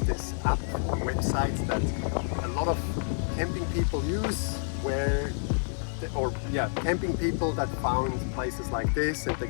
this app website that a lot of camping people use, camping people that found places like this, and they're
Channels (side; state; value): right; silent; digital silence